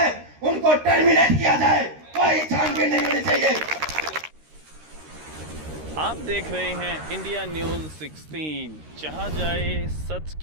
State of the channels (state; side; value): late; left; 13 ms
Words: उनको टर्मिनेट किया जाए, कोई छानबीन नहीं होनी चाहिए। आप देख रहे हैं इंडिया न्यूज 16, जहां जाए सच